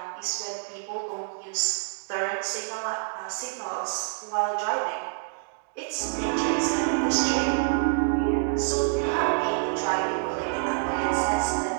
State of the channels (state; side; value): silent; left; digital silence